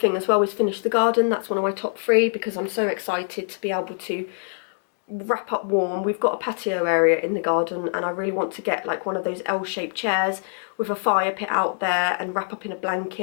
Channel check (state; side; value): silent; right; digital silence